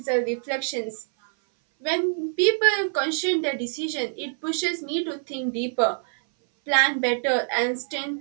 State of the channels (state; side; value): silent; left; 59 dB below the other